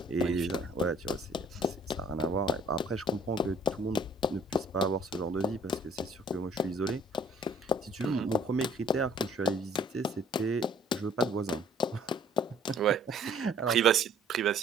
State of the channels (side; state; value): both; normal; correlation 0.58